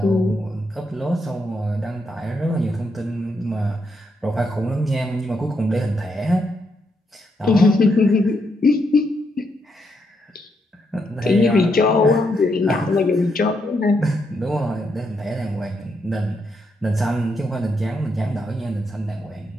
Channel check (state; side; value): normal; both; correlation 0.79